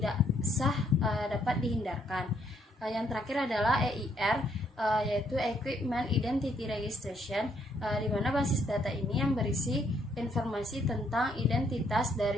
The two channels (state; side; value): normal; both; correlation 0.71